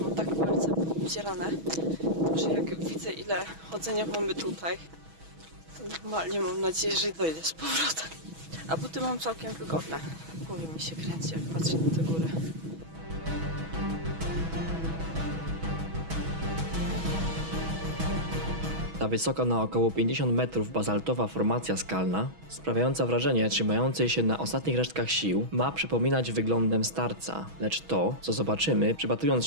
tak palce obcierane, że jak widzę, ile chodzenia mamy tutaj, to normalnie mam nadzieję, że dojdę z powrotem. A buty mam całkiem wygodne. W głowie mi się kręci, jak patrzę na te góry. Ta wysoka na około 50 metrów bazaltowa formacja skalna, sprawiająca wrażenie trzymającej się na ostatnich resztkach sił, ma przypominać wyglądem starca, lecz to, co zobaczymy, przypatrując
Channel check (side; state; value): left; late; 6.2 ms